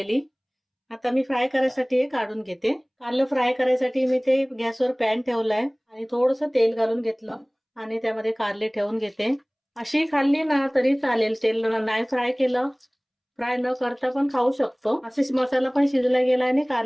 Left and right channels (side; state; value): both; identical; correlation 1.00